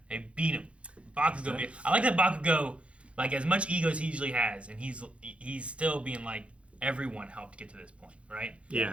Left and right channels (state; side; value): late; left; 0.061 ms